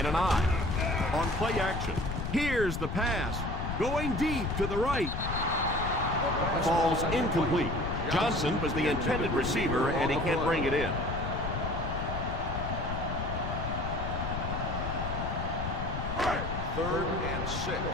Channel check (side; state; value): left; noise; rumble, 4 dB below the sound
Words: an I. On play action. Here's the pass. Going deep to the right. Falls incomplete. Johnson was the intended receiver, and he can't bring it in. Third and